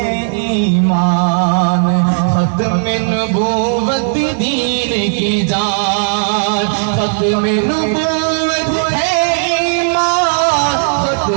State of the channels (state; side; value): silent; left; digital silence